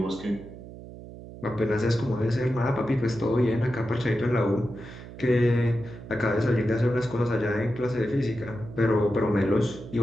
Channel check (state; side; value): noise; right; hum, 15 dB below the sound